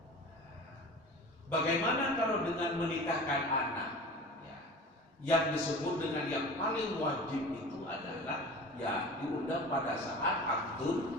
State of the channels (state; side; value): normal; both; correlation 0.37